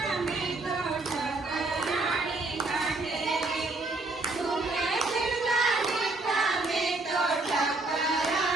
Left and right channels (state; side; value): quieter; left; 3.1 dB